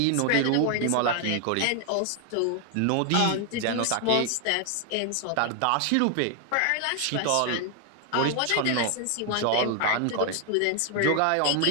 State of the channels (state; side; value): different; both; correlation 0.01